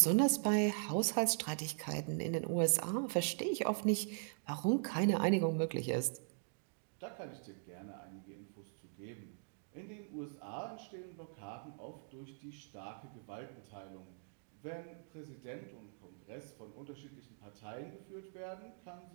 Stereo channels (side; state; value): left; silent; digital silence